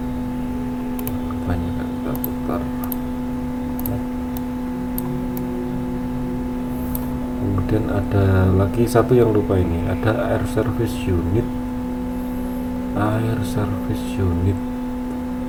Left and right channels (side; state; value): both; identical; correlation 1.00